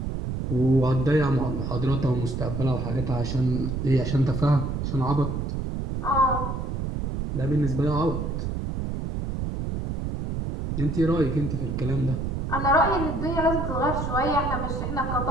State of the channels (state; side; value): noise; right; rumble, 3 dB below the sound